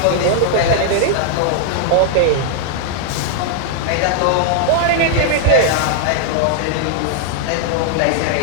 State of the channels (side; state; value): both; different; correlation -0.01